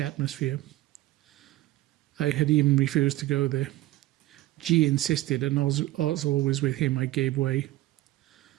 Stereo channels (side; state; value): left; quieter; 16.7 dB